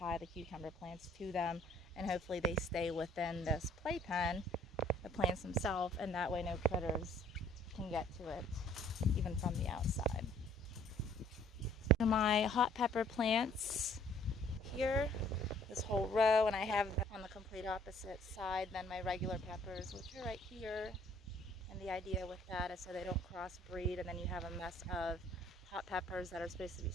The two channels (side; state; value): both; normal; correlation 0.59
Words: the cucumber plants to them, and hopefully they stay within this playpen, the plants themselves, and that way no critters can get to it, even from the outside. My hot pepper plants here, this whole row, and I have them on the complete opposite side than my regular peppers, which are right here. And the idea with that is so they don't crossbreed, and then you have a mess of hot peppers that are supposed to be